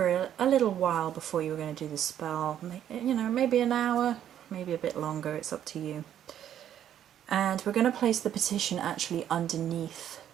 a little while before you were going to do the spell. You know, maybe an hour, maybe a bit longer, it's up to you. And we're going to place the petition actually underneath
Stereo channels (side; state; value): left; quieter; 10.4 dB